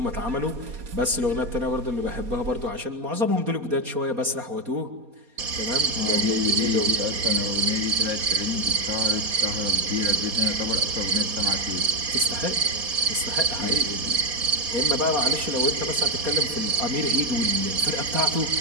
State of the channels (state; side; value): late; left; 4.2 ms